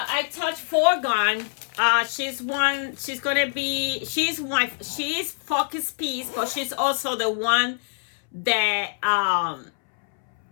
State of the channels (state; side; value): silent; right; 62 dB below the other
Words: touched Foregone. She's Focus Piece, but she's also the one that